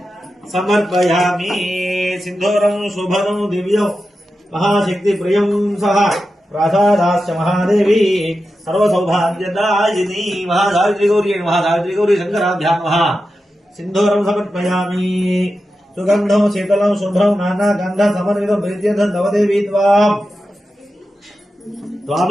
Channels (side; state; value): both; normal; correlation 0.91